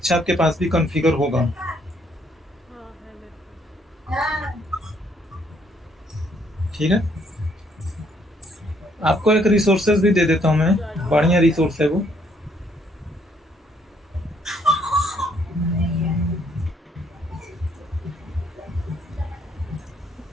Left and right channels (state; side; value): normal; both; correlation 0.68